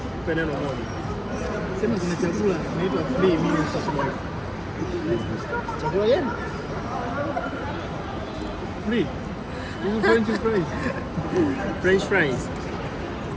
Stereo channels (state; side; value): identical; both; correlation 1.00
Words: Nipe neno moja. Sema kuna chakula inaitwa free meal sasa. Chakula gani? Free. Hizo French fries. French fries.